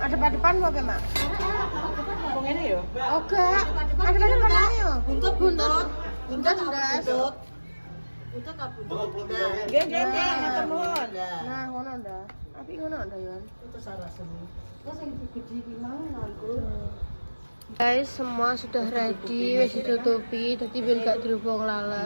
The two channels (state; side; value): inverted; both; correlation -1.00